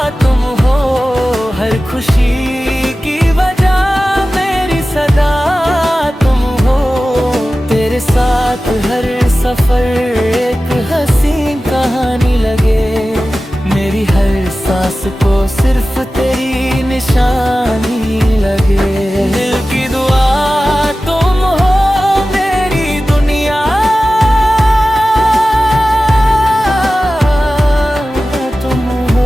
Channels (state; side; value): normal; both; correlation 0.95